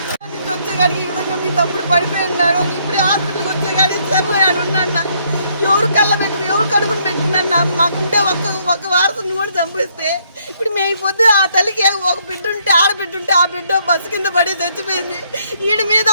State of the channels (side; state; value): both; inverted; correlation -0.69